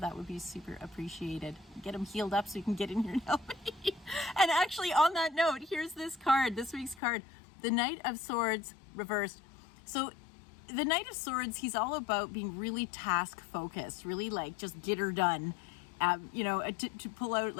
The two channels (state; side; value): drops out; right; at 7.0 s